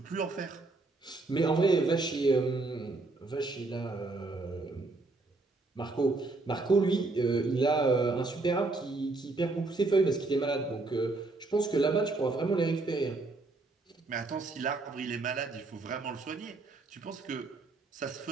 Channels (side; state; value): left; quieter; 3.4 dB